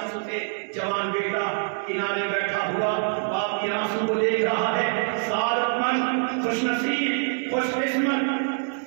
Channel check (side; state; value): left; silent; 62 dB below the other